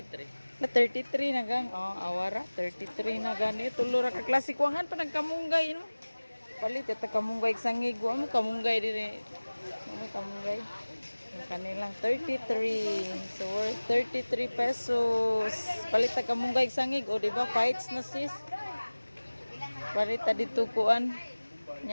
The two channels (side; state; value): both; inverted; correlation -1.00